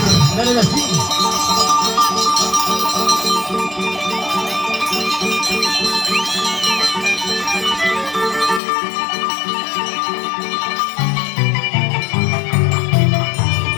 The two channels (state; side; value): drops out; right; at 8.6 s